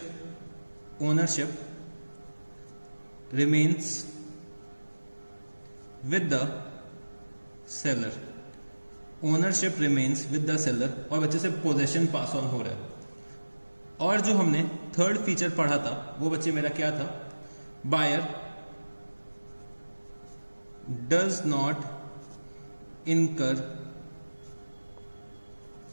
remains with the seller, ownership remains with the seller, और बच्चे से पोजेशन पास ऑन हो रहा है। और जो हमने थर्ड फीचर पढ़ा था वो बच्चे मेरा क्या था? बायर डज नॉट इनकर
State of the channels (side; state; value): both; inverted; correlation -1.00